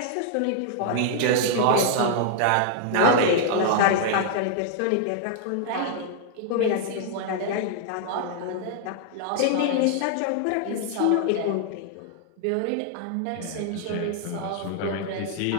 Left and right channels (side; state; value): both; different; correlation 0.00